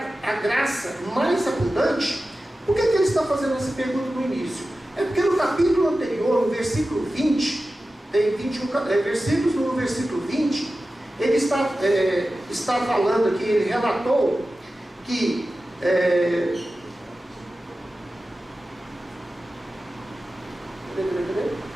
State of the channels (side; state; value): both; normal; correlation 0.94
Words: a graça mais abundante? Por que ele está fazendo essa pergunta no início? É porque no capítulo anterior, no versículo 20, tem 21 versículos, no versículo 20, ele está falando aqui, ele relatou que